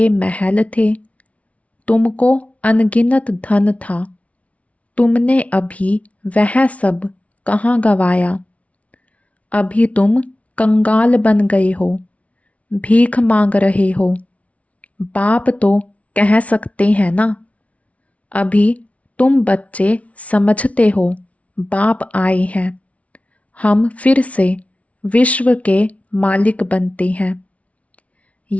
महल थे, तुमको अनगिनत धन था, तुमने अभी वह सब कहाँ गवाया। अभी तुम कंगाल बन गए हो, भीख मांग रहे हो। बाप तो कह सकते हैं ना। अभी तुम बच्चे समझते हो बाप आए हैं, हम फिर से विश्व के मालिक बनते हैं।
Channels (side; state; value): right; late; 0.065 ms